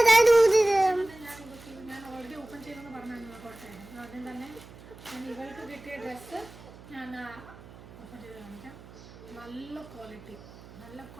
ഞാൻ ഓൾറെഡി ഓപ്പൺ ചെയ്തെന്ന് പറഞ്ഞാൽ കുറച്ചായിരുന്നു. ആദ്യം തന്നെ ഞാൻ ഇവൾക്ക് കിട്ടിയ ഡ്രസ്സ് ഞാൻ ഓപ്പൺ ചെയ്ത് കാണിക്കാം. നല്ല ക്വാളിറ്റി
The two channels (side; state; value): right; noise; hum, 19 dB below the sound